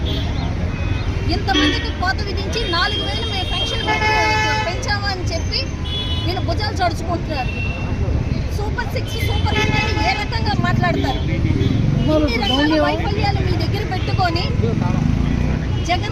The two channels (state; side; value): identical; both; correlation 1.00